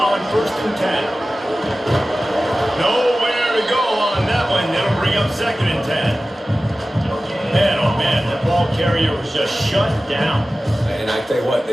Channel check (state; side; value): normal; both; correlation 0.96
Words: 1st and 10. Nowhere to go on that one. That'll bring up 2nd and 10. Man, oh man, the ball carrier was just shut down. And I tell you what,